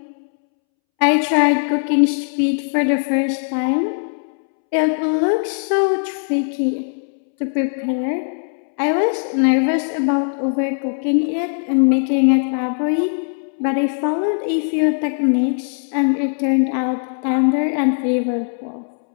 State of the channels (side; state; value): right; silent; 66 dB below the other